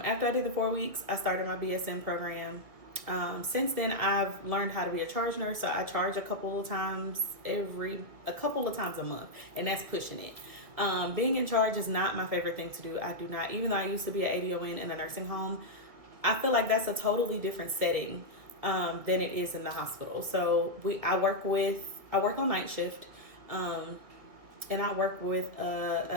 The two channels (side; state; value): left; late; 2.1 ms